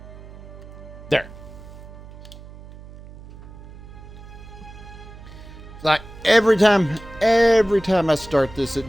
There. Like every time I start this, it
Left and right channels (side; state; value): right; noise; hum, 17 dB below the sound